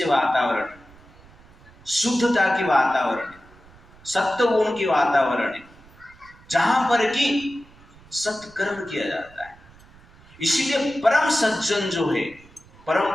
वातावरण, शुद्धता की वातावरण है, सत्य गुण की वातावरण है, जहां पर कि सत्कर्म किया जाता है। इसीलिए परम सज्जन जो है,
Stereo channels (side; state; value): right; noise; rumble, 25 dB below the sound